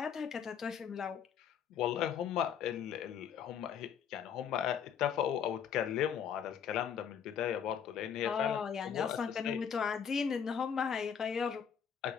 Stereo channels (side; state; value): right; quieter; 7.9 dB